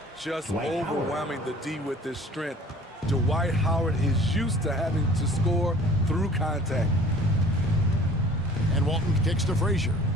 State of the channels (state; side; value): normal; both; correlation 0.49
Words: Just overwhelming the D with his strength. Dwight Howard is used to having to score through contact. And Walton kicks to Frazier.